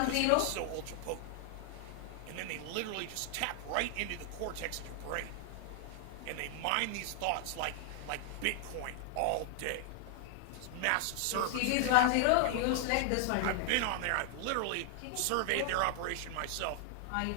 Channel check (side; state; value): both; different; correlation 0.00